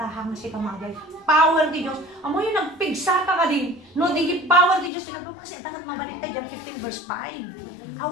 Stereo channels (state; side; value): drops out; right; at 4.9 s